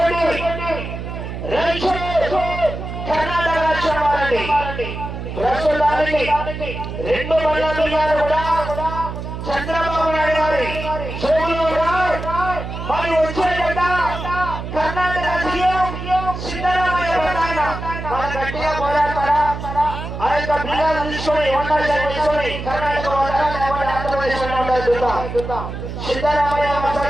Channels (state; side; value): noise; right; hum, 7 dB below the sound